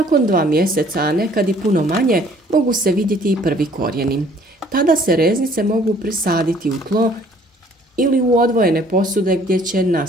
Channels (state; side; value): normal; both; correlation 0.58